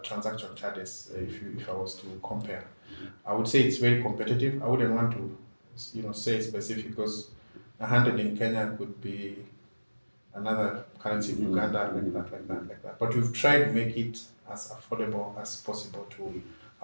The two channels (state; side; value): inverted; both; correlation -1.00